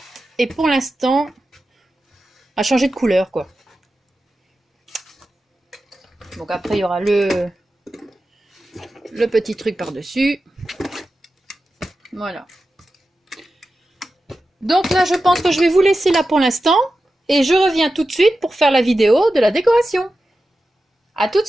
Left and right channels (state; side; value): normal; both; correlation 0.92